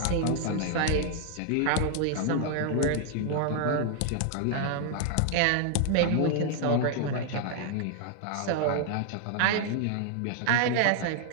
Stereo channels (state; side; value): different; both; correlation 0.00